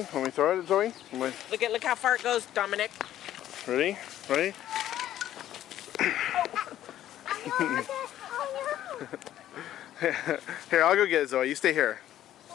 When we throw it at Zoe? Look how far it goes, Dominic. Ready? Ready? Here, I'll go get it, Zoe. You stay here.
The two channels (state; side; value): quieter; right; 12.4 dB